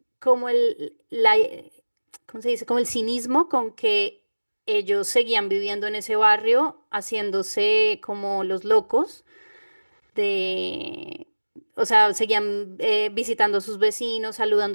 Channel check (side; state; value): both; inverted; correlation -1.00